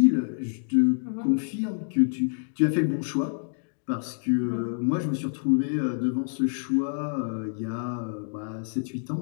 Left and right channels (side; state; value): right; silent; digital silence